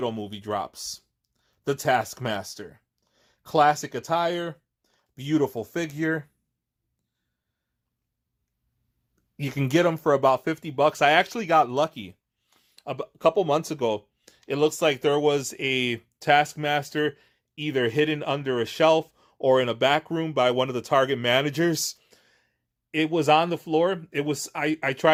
movie drops. The Taskmaster. Classic attire, beautiful figure. You can get them for about $50. I actually got lucky. A couple months ago, it looks like there was a Taskmaster either hidden under a shelf or in a back room by one of the Target managers. It was on the floor. I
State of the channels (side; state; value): both; identical; correlation 1.00